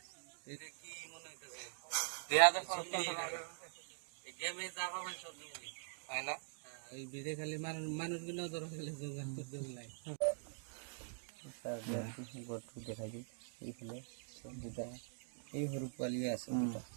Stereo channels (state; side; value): silent; left; digital silence